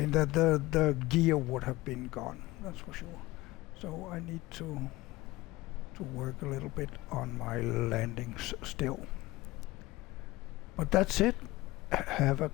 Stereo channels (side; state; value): right; quieter; 19.6 dB